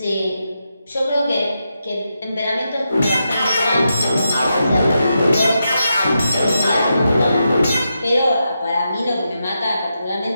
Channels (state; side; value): inverted; both; correlation -0.86